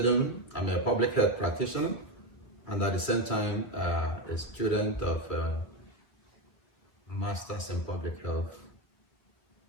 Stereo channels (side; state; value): right; late; 2.1 ms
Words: I'm a public health practitioner and at the same time a student of Masters in Public Health,